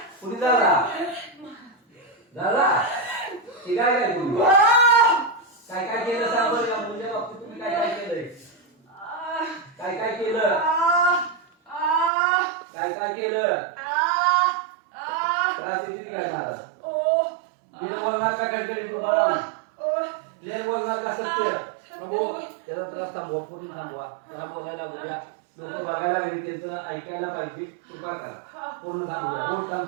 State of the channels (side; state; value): left; drops out; at 12.1 s